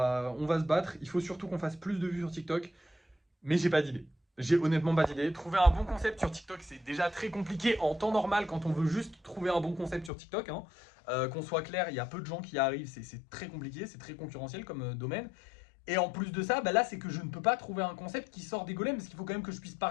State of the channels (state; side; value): drops out; right; at 10.1 s